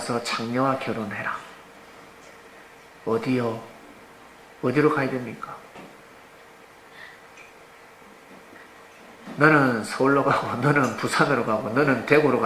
장녀와 결혼해라. 어디요? 어디로 가야 됩니까? 너는 서울로 가고 너는 부산으로 가고 너는 대구로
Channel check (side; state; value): both; identical; correlation 1.00